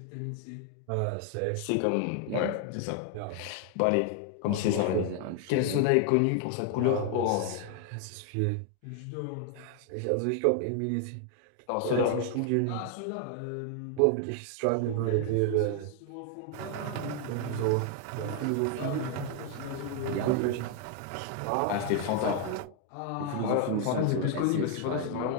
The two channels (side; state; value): both; different; correlation 0.00